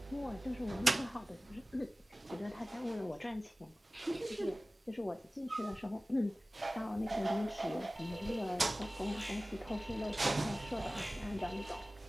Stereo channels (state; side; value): normal; both; correlation 0.97